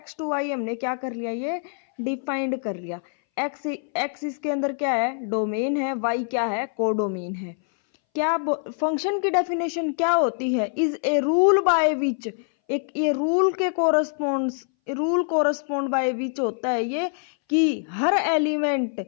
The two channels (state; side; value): silent; right; 60 dB below the other